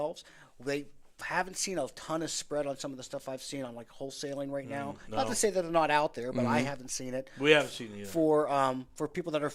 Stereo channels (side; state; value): both; identical; correlation 1.00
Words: They haven't seen a ton of spread on some of the stuff I've seen on like wholesaling right now. No. Not to say that they're not out there, but I haven't seen it. We haven't seen it either. For people that are